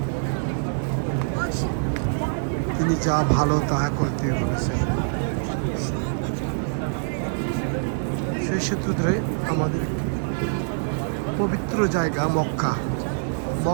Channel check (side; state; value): left; silent; digital silence